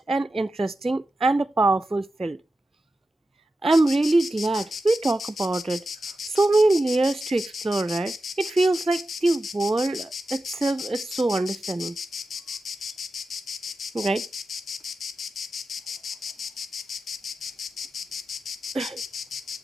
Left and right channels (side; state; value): both; normal; correlation 0.91